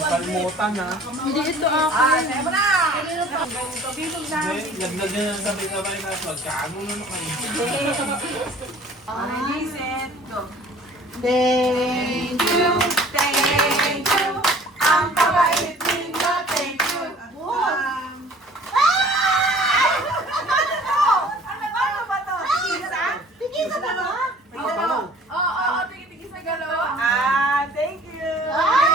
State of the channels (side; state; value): both; normal; correlation 0.50